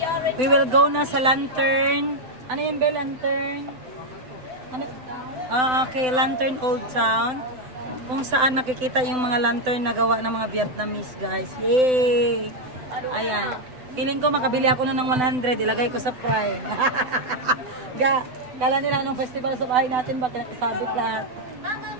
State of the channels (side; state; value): left; late; 7.9 ms